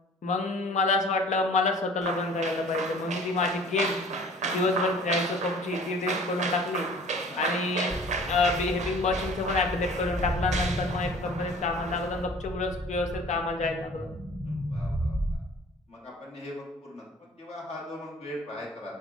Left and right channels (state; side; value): normal; both; correlation 0.48